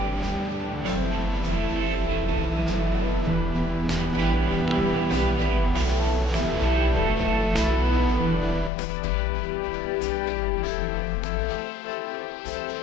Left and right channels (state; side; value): drops out; right; at 8.7 s